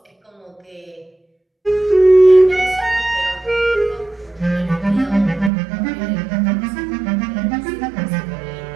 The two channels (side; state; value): left; drops out; at 5.5 s